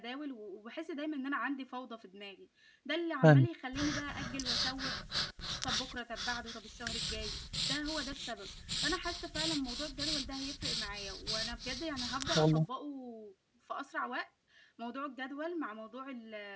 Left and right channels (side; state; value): both; identical; correlation 1.00